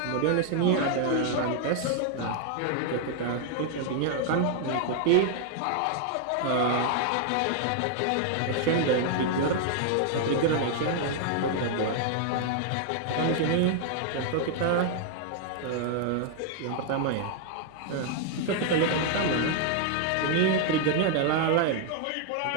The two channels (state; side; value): different; both; correlation 0.00